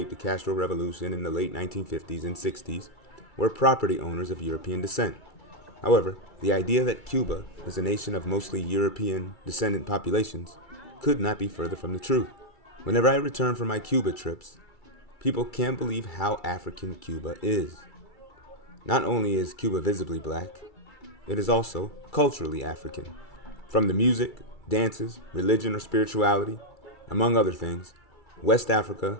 the Castro Revolution in the late 1950s and 60s, were property owners of European descent. However, the idea that Cuba is a nation of mostly European descendant populations could not be further from the truth. Whenever I return from my Cuba trips, people can't believe how African Cuba is. Not only is Cuba visibly black, it is also culturally African. From the music, dances, religion, or spirituality, among other things, West Africa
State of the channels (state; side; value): late; right; 2.3 ms